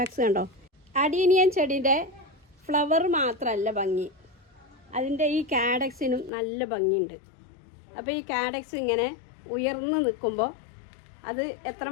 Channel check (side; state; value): right; drops out; at 6.3 s